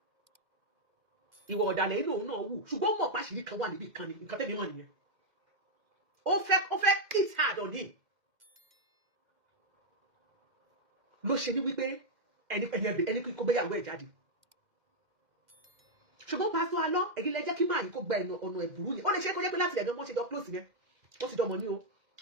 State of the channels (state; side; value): late; left; 2.1 ms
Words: ìwọ ọ̀dàlẹ̀ inú òun náà wù ṣùgbọ́n mọ̀ pàṣírí kan wà níbi kan ni nǹkan tẹ́mi mọ̀ nìyẹn ó fẹ́ hit hard on him ló ṣe ní wípé ẹni kó gbéyàwó ẹ̀ jáde ṣùgbọ́n pásítọ̀ Alọ́ ẹ̀gín lẹ́jẹ́ kí máa yìí kó gba ọ̀nà ẹ̀bùrú yìí ó lè ṣe é kó jẹ́ pé láti ẹ̀gán wọ́n ṣe jọ close yẹn wọ́n ti dọmọ ní o